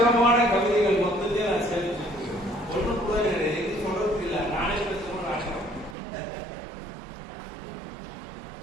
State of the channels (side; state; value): left; drops out; at 6.0 s